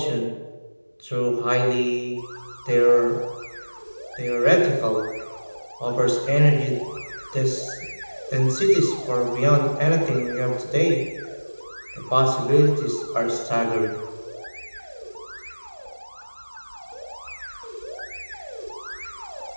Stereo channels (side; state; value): both; inverted; correlation -1.00